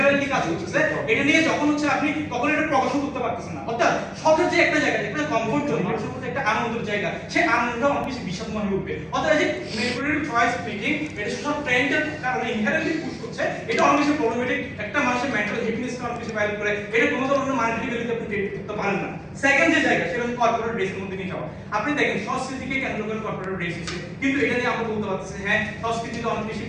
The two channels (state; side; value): identical; both; correlation 1.00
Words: কাজ করতেছে, এটা নিয়ে যখন হচ্ছে আপনি তখন এটা প্রকাশন করতে পারতেছেন না, অর্থাৎ শখের যে একটা জায়গা, একটা কমফোর্ট জোন, মানুষের মধ্যে একটা আনন্দের জায়গা, সেই আনন্দটা অনেক বেশি বিষাদময় হয়ে উঠবে। অর্থাৎ এই যে ম্যানিপুলেটিভ চয়েস মেকিং এটা সোশ্যাল ট্রেন্ডের কারণে ইনহেরেন্টলি পুশ করছে, এটা অনেক বেশি প্রবলেমেটিক, একটা মানুষের মেন্টাল হ্যাপিনেসকে অনেক বেশি ভাইরাল করে, এটা কোনো ধরনের মনিটারি ভ্যালুতে আপনি ক্রিয়েট করতে পারেন না। সেকেন্ড যে জায়গা সেটা হচ্ছে কর্পোরেট ড্রেসের মধ্যে নিয়ে যাওয়া। আপনি দেখেন সংস্কৃতিকে কেন্দ্র করে কর্পোরেট ড্রেস এসেছে, কিন্তু এটা নিয়ে আমরা বলতে পারতেছি হ্যাঁ সংস্কৃতিতে অনেক বেশি